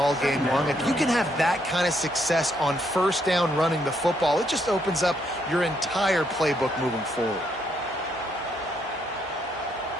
game long. If you can have that kind of success on first down running the football, it just opens up your entire playbook moving forward.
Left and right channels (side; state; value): both; normal; correlation 0.74